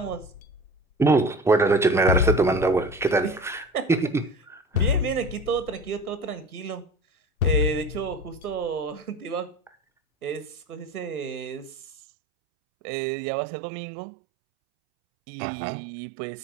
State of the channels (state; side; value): drops out; left; at 11.9 s